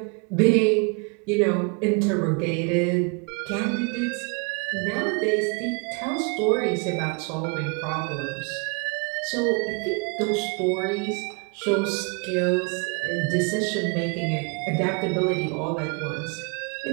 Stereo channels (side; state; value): left; quieter; 34.2 dB